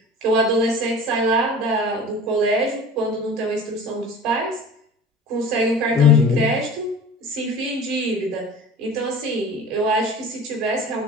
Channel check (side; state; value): both; normal; correlation 0.39